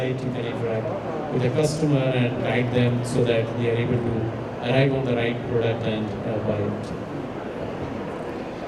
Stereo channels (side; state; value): both; identical; correlation 1.00